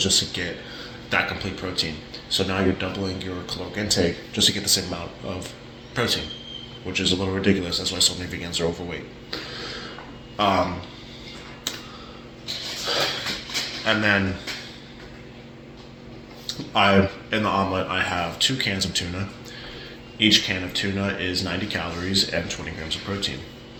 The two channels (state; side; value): identical; both; correlation 1.00